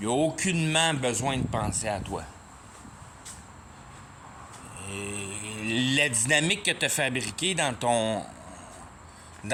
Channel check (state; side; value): identical; both; correlation 1.00